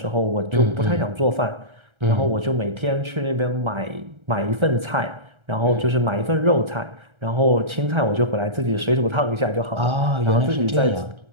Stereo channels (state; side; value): late; left; 1.3 ms